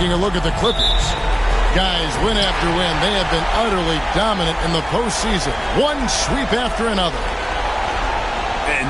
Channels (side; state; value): both; identical; correlation 1.00